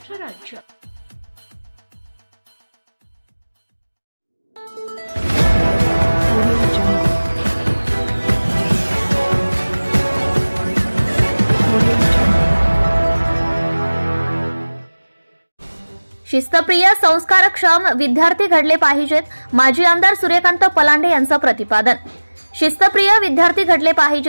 राज्य। शिस्तप्रिय संस्कारक्षम विद्यार्थी घडले पाहिजेत, माजी आमदार सूर्यकांत पलांडे यांचं प्रतिपादन। शिस्तप्रिय विद्यार्थी घडले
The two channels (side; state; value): both; inverted; correlation -1.00